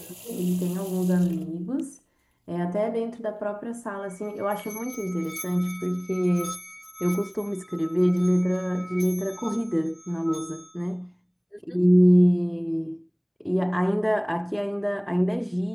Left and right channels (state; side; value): identical; both; correlation 1.00